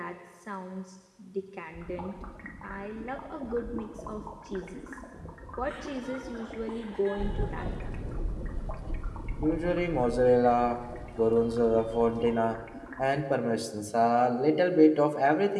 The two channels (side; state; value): both; identical; correlation 1.00